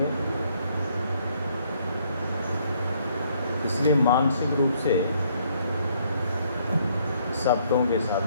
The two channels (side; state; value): both; inverted; correlation -0.67